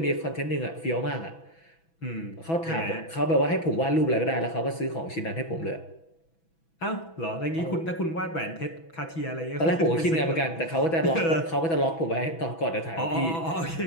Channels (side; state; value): right; late; 6.1 ms